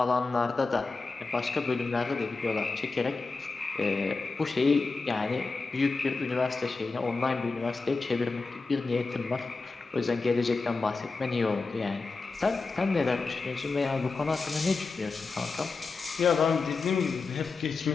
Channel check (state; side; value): quieter; right; 4.0 dB